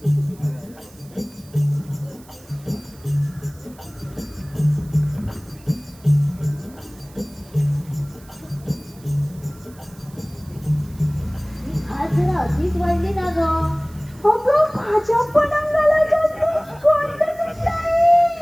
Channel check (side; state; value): right; noise; hiss, 25 dB below the sound